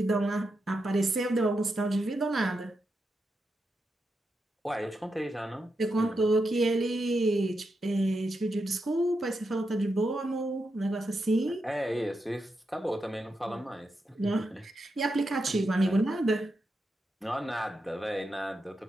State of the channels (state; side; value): normal; both; correlation 0.86